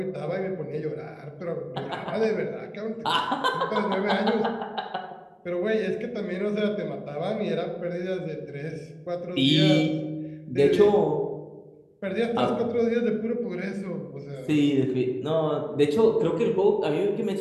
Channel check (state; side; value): identical; both; correlation 1.00